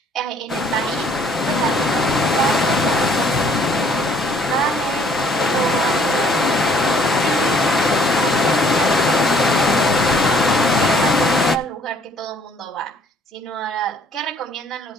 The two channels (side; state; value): both; normal; correlation 0.61